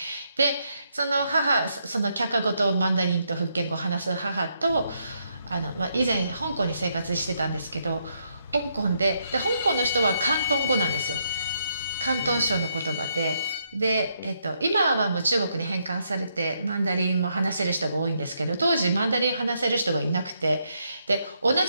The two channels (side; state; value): both; inverted; correlation -0.77